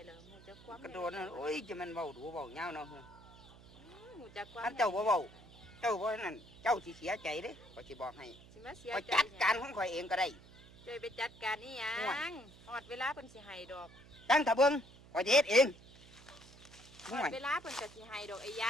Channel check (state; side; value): noise; right; hum, 21 dB below the sound